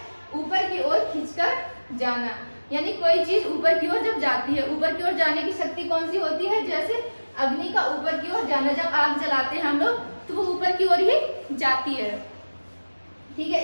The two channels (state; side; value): inverted; both; correlation -1.00